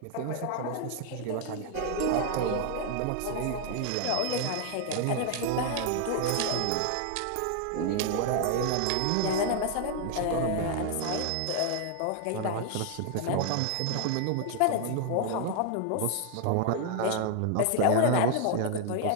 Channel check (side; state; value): both; different; correlation 0.00